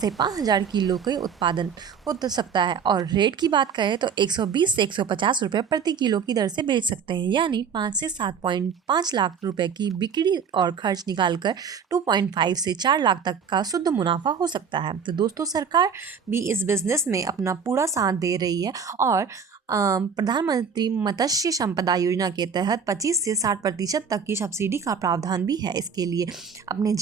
5 हजार किलो के उत्पादन हो तो सकता है। और रेट की बात करें तो 120 से 150 रुपये प्रति किलो की दर से बेच सकते हैं, यानी 5 से 7.5 लाख रुपए की बिक्री और खर्च निकालकर 2.5 से 4 लाख तक का शुद्ध मुनाफा हो सकता है। तो दोस्तों, सरकार भी इस बिजनेस में अपना पूरा साथ दे रही है और प्रधानमंत्री मत्स्य संपदा योजना के तहत 25 से 60% तक की सब्सिडी का प्रावधान भी है। इसके लिए अपने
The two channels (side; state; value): left; quieter; 6.5 dB